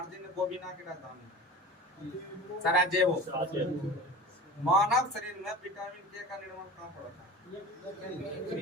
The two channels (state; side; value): normal; both; correlation 0.35